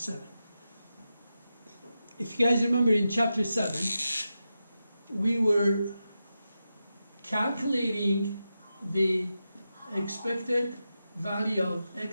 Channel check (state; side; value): inverted; both; correlation -0.90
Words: If you guys remember, in chapter 7, we were calculating the expected value of